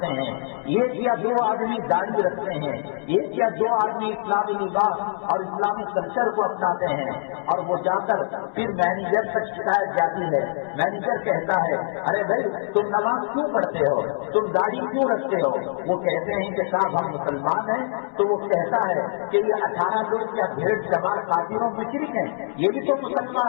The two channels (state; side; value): silent; right; 63 dB below the other